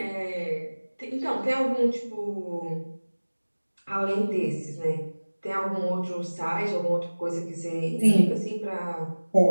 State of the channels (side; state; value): both; inverted; correlation -1.00